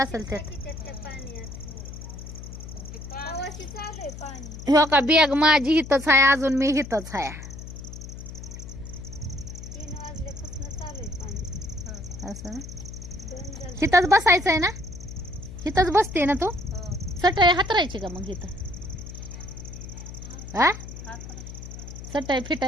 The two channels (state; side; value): noise; left; hum, 11 dB below the sound